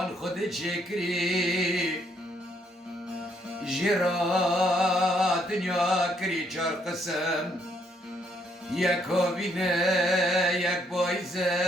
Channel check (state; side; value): normal; both; correlation 0.71